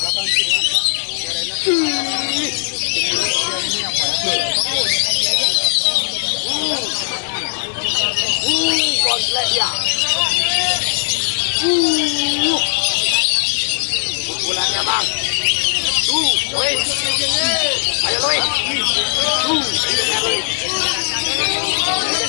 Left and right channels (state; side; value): silent; right; 67 dB below the other